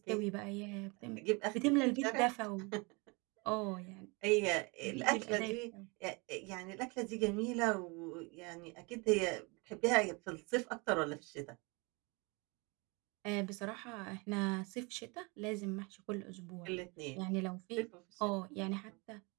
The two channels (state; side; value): quieter; left; 28.6 dB